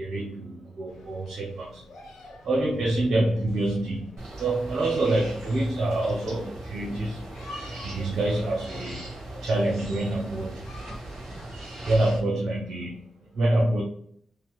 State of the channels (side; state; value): both; normal; correlation 0.88